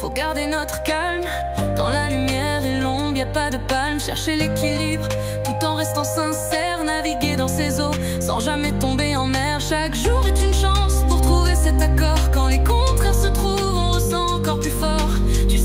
faut garder notre calme. Dans la lumière et l'ombre, y a pas de palme. Chercher l'équilibre tout en restant sincère. Naviguer dans ces eaux sans jamais tomber en mer. Chaque jour est une chance pour trouver cet accord. Quand les contraires se trouvent, on ressent encore plus fort. Tu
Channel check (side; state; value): both; identical; correlation 1.00